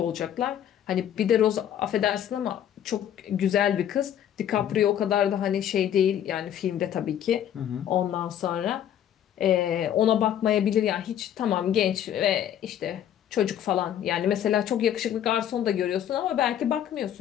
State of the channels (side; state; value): right; quieter; 10.3 dB